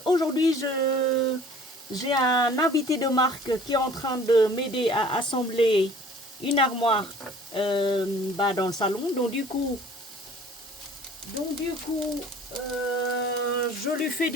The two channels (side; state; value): both; normal; correlation 0.50